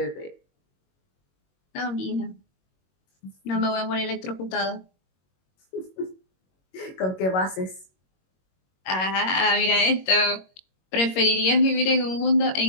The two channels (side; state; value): right; late; 21 ms